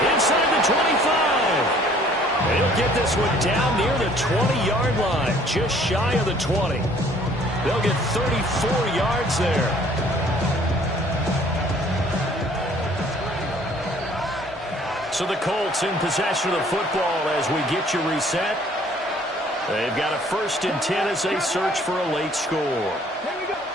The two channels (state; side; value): normal; both; correlation 0.57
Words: inside the 25. And he'll get this one down near the 20-yard line, just shy of the 20. They'll get 34 yards there. So the Colts in possession of the football as we get you reset. They've got a 1st and 10 as they search for a late score.